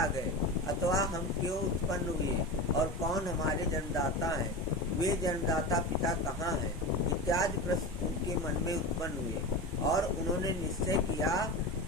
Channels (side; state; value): both; normal; correlation 0.25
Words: गए अथवा हम क्यों उत्पन्न हुए और कौन हमारे जन्मदाता हैं? वे जन्मदाता पिता कहाँ हैं? इत्यादि प्रश्न उनके मन में उत्पन्न हुए और उन्होंने निश्चय किया